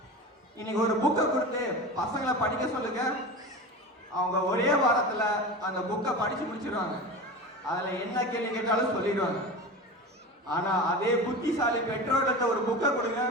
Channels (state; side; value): normal; both; correlation 0.29